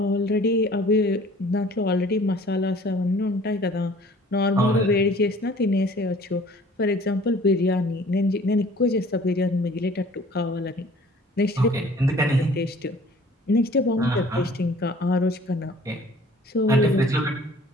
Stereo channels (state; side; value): normal; both; correlation 0.51